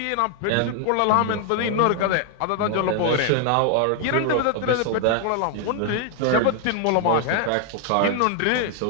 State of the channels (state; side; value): different; both; correlation 0.00